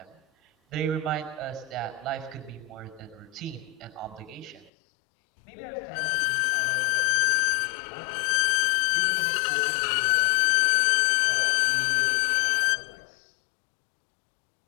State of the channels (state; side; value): drops out; right; at 4.7 s